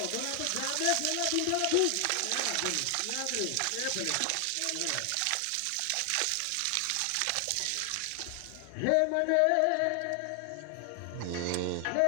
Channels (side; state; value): both; different; correlation 0.00